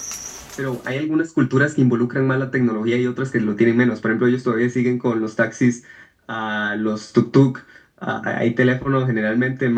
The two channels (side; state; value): both; identical; correlation 1.00